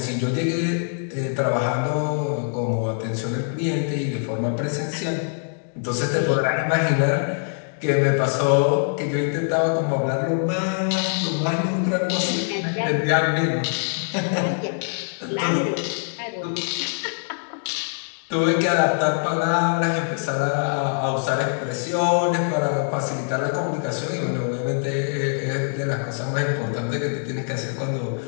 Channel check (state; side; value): silent; right; digital silence